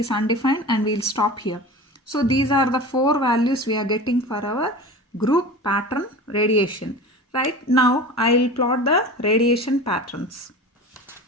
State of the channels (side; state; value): both; normal; correlation 0.34